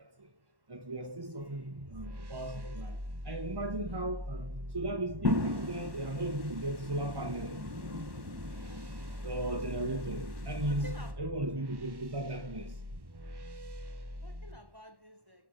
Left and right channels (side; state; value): left; late; 1.1 ms